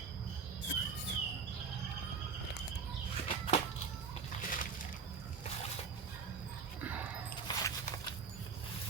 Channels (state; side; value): quieter; left; 5.7 dB